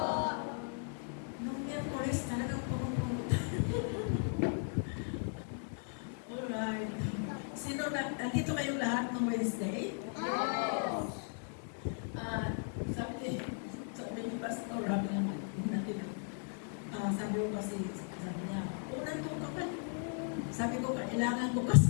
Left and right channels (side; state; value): right; silent; 53 dB below the other